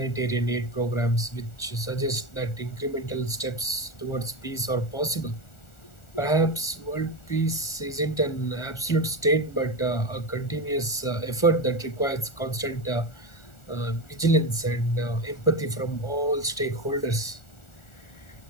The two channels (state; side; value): late; right; 1.4 ms